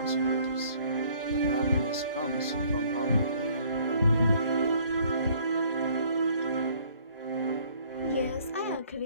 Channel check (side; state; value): both; inverted; correlation -0.60